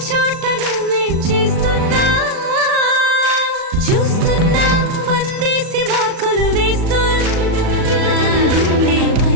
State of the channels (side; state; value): left; late; 38 ms